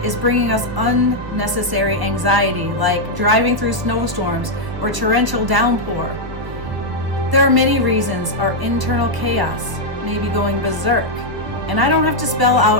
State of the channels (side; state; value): left; late; 1.2 ms